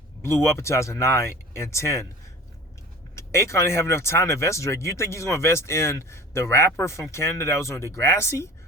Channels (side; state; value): both; normal; correlation 0.40